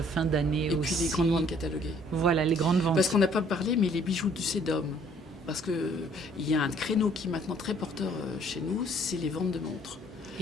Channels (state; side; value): normal; both; correlation 0.60